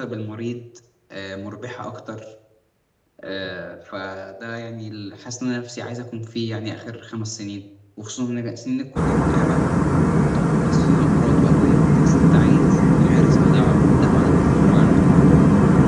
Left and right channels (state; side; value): identical; both; correlation 1.00